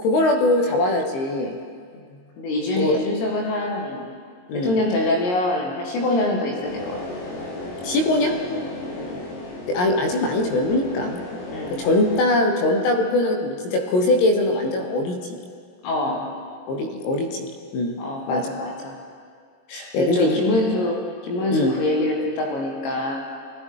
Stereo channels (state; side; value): late; right; 22 ms